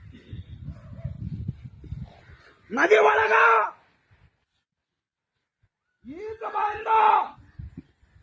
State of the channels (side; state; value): both; identical; correlation 1.00